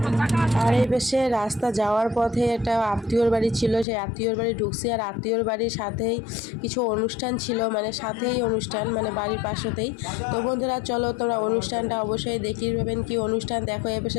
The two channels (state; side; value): drops out; right; at 3.9 s